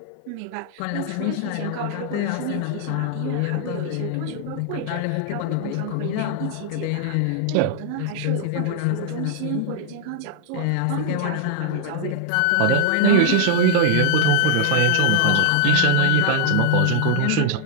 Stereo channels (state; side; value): different; both; correlation -0.01